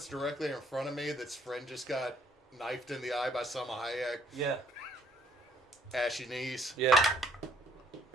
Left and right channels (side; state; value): both; normal; correlation 0.64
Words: directly in front of me, that's friend just got knifed in the eye by Selma Hayek. Yeah. Ashy knees. Yeah.